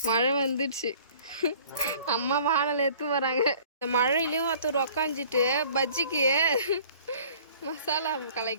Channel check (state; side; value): inverted; both; correlation -0.52